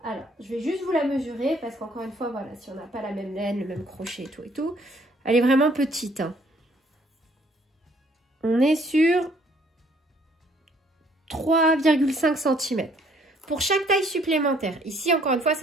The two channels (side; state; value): both; normal; correlation 0.63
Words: Alors, je vais juste vous la mesurer parce qu'encore une fois, voilà, si on n'a pas la même laine, le même crochet et tout, elle est vraiment petite. Hein. On est sur 3,5 cm. Pour chaque taille supplémentaire, ici encore une fois,